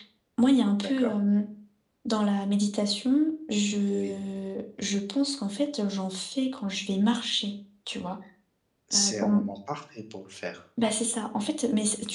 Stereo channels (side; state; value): both; identical; correlation 1.00